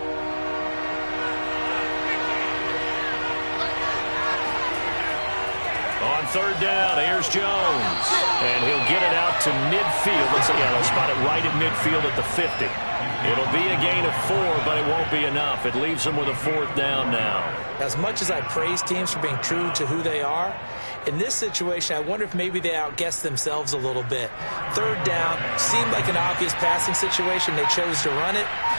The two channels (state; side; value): inverted; both; correlation -1.00